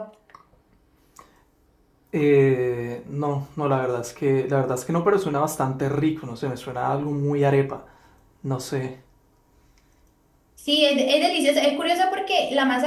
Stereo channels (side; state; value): both; identical; correlation 1.00